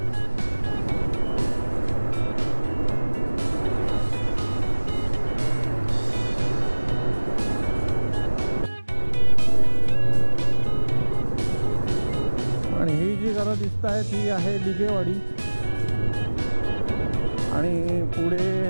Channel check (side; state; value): both; inverted; correlation -1.00